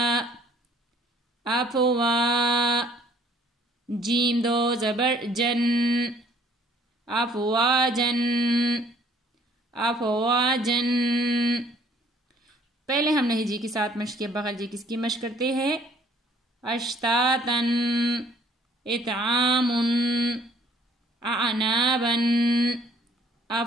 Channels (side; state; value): both; normal; correlation 0.59